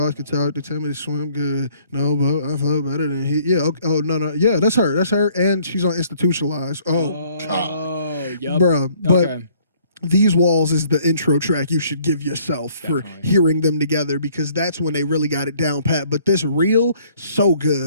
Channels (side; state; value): both; inverted; correlation -0.60